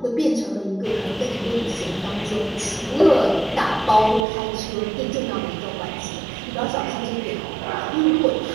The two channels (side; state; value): left; drops out; at 4.2 s